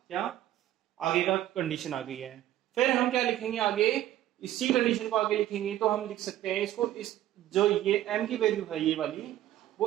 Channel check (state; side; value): quieter; left; 13.2 dB